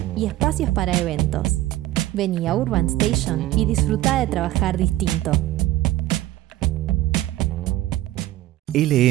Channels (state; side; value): quieter; left; 15.3 dB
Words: y espacios para eventos. Vení a Urban Station y disfrutá de trabajar distinto.